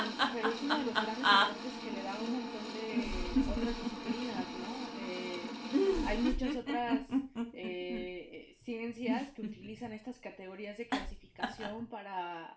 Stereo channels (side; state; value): both; identical; correlation 1.00